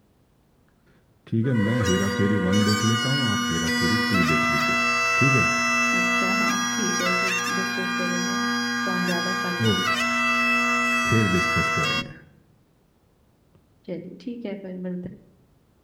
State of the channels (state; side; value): identical; both; correlation 1.00